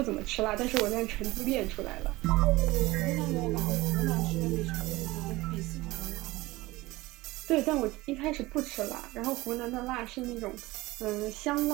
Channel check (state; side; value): quieter; left; 19.8 dB